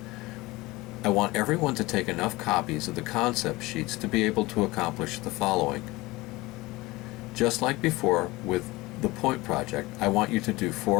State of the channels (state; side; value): quieter; right; 21.0 dB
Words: I want everyone to take enough copies of the concept sheets to be able to accomplish the following. Just like before with the point project, I want you to do